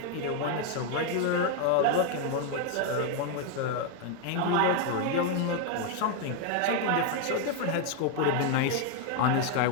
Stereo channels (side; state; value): both; different; correlation 0.01